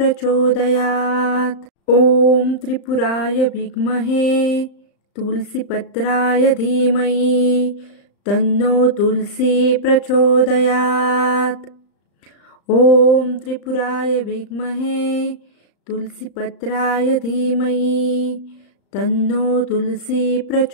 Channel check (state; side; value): late; right; 35 ms